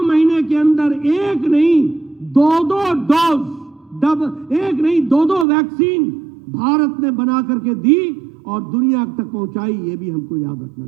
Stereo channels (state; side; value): drops out; left; at 5.5 s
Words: महीने के अंदर एक नहीं दो डोज, एक नहीं दो वैक्सीन भारत ने बना करके दी और दुनिया तक पहुंचाई। ये भी हमको याद रखना